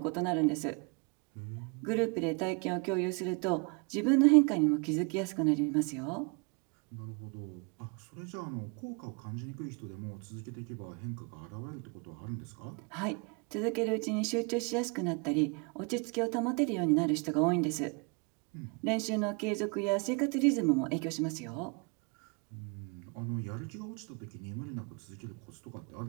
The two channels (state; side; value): quieter; left; 32.8 dB